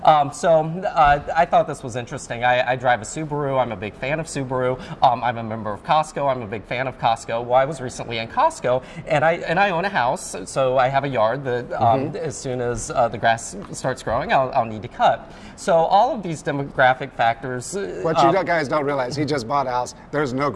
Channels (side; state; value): both; identical; correlation 1.00